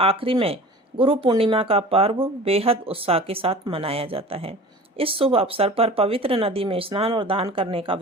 में गुरु पूर्णिमा का पर्व बेहद उत्साह के साथ मनाया जाता है। इस शुभ अवसर पर पवित्र नदी में स्नान और दान करने का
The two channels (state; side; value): normal; both; correlation 0.40